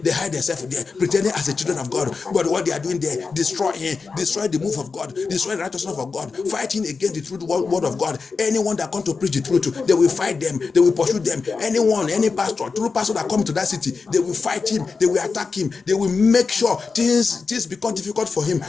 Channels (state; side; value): quieter; right; 4.7 dB